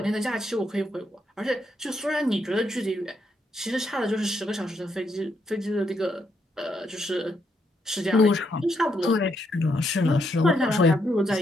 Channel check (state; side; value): normal; both; correlation 0.77